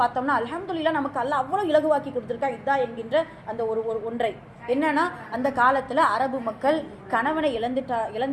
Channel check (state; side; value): identical; both; correlation 1.00